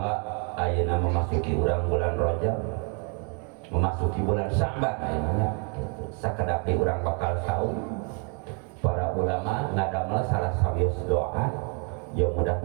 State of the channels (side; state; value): left; quieter; 37.7 dB